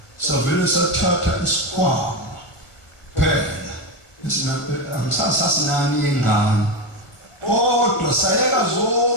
savele sathatha isikhwama phela angisasinani yengane kodwa sayeka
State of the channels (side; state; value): right; late; 1.5 ms